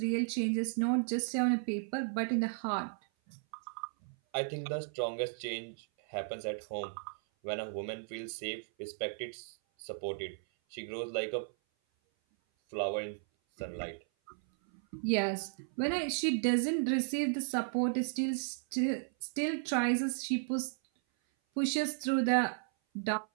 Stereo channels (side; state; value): left; silent; 55 dB below the other